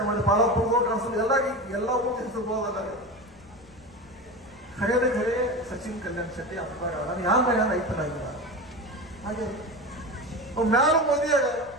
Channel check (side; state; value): left; noise; rumble, 26 dB below the sound